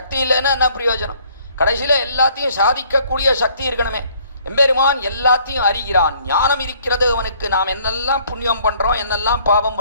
இல்லைன்னா என்ன பிரயோஜனம்? கடைசியில எல்லாத்தையும் சாதிக்கக்கூடிய சக்தி இருக்கணுமே. எம்பெருமான் எல்லாத்தையும் அறிகிறான். ஞானம் இருக்கிறது அவனுக்கு. நாம் என்னெல்லாம் புண்ணியம் பண்றோம், என்னெல்லாம் பாவம்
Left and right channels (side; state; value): both; inverted; correlation -0.61